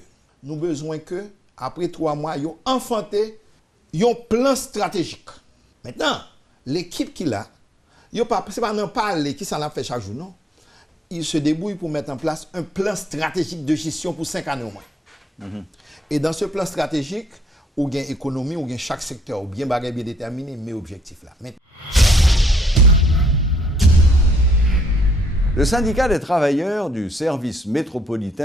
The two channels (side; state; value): both; normal; correlation 0.70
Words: nous avons besoin que, après 3 mois, ils ont enfanté un plan stratégique. Maintenant, l'équipe qu'il a, ce n'est pas un parler qui s'en a fait chaque jour, non. Il se débrouille pour mettre en place un plan stratégique de gestion pour 5 années au moins. Et dans ce plan stratégique, ou bien économie, ou bien chaque secteur, ou bien bagay bien déterminé, mais objectif là. Le syndicat des travailleurs du service